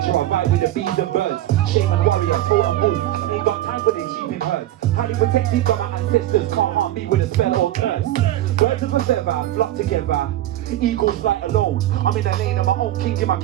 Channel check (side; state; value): left; quieter; 14.0 dB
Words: I vibe with the bees and birds. Shaman warrior, totem wolf, ain't got time for these sheeping herds. Highly protected by my ancestors, can't harm me with a spell or curse. Birds of a feather, flock together, eagles fly alone. I'm in the lane of my own king, in my